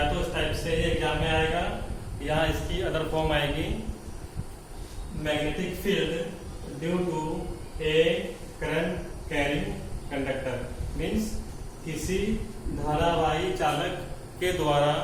तो इस टाइप से एग्जाम में आएगा या इसकी अदर फॉर्म आएगी magnetic field due to a current carrying conductor. Means किसी धारावाही चालक के द्वारा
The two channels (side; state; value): both; identical; correlation 1.00